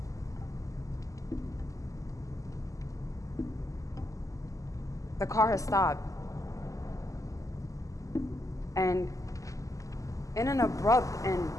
The car has stopped. And in an abrupt and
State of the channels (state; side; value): late; right; 0.16 ms